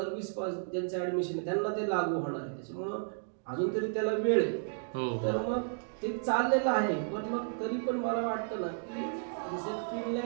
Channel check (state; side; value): silent; left; digital silence